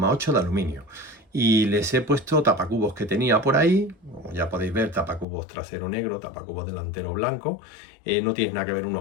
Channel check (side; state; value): right; drops out; at 5.2 s